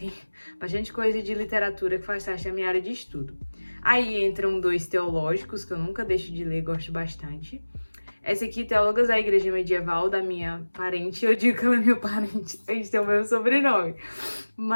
bastante coisa de literatura que faz parte da minha área de estudo. Aí entram 2 teológicos, que eu nunca deixo de ler, gosto bastante. Essa aqui, Teólogas da Igreja Medieval, da minha parente. Eu digo que ela é minha parente, a gente tem o mesmo sobrenome.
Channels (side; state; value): both; inverted; correlation -1.00